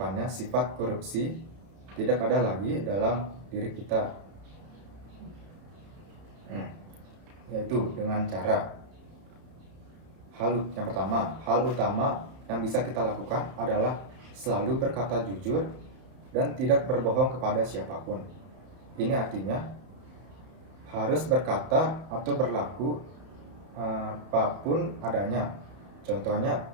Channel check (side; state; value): left; late; 32 ms